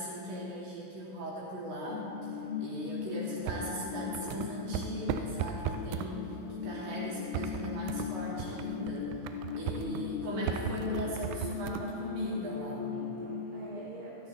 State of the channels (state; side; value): late; left; 16 ms